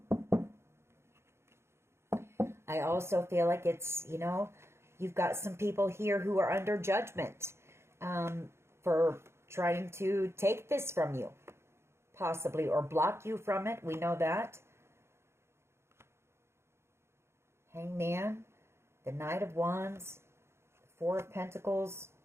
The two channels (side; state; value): left; late; 0.13 ms